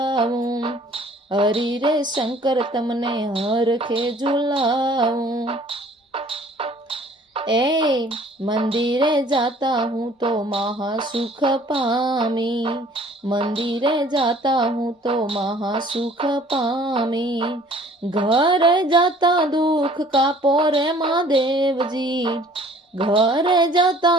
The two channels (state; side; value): normal; both; correlation 0.53